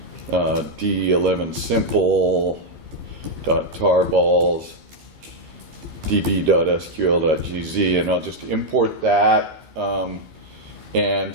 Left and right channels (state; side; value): late; left; 13 ms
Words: D11 simple .tarballs db.sql.gz, and I'll just import that.